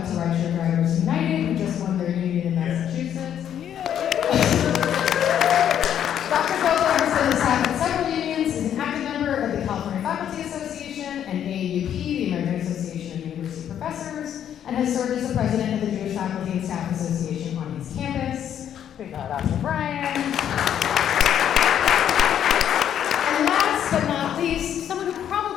to Rideshare Drivers United, who just won their union in Massachusetts. Dr. Goldberg has been the staff at several unions, is an active member of the California Faculty Association and AAUP, the American Association of University Professors, and has served as the president of the Jewish Faculty and Staff Association on his campus. We got Dr. Brian. And last but not least, someone who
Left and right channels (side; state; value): right; quieter; 9.7 dB